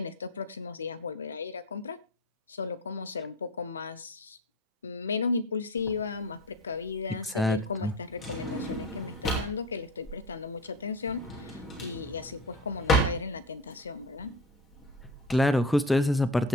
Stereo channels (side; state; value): both; normal; correlation 0.32